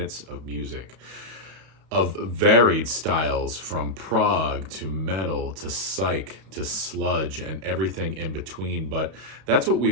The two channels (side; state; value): left; late; 32 ms